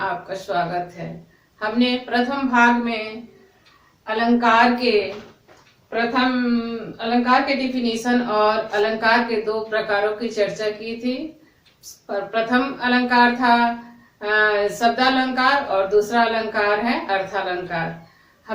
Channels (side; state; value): both; identical; correlation 1.00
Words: स्वागत है। हमने प्रथम भाग में अलंकार के डिफिनीशन और अलंकार के दो प्रकारों की चर्चा की थी। प्रथम अलंकार था शब्दालंकार और दूसरा अलंकार है अर्थालंकार।